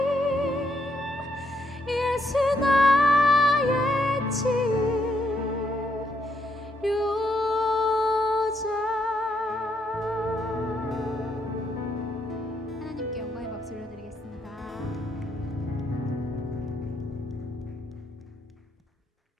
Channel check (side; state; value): both; normal; correlation 0.75